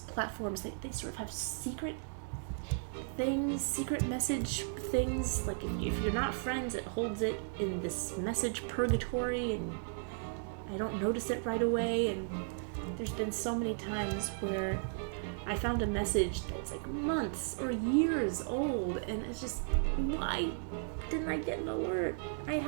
they sort of have secret things, secret message things. Like if you're not friends, it holds it in this message purgatory, and I don't notice it right away. And there's been so many times where I found a message that's like months or years old, and it's just, why didn't I get an alert? I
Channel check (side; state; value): left; silent; digital silence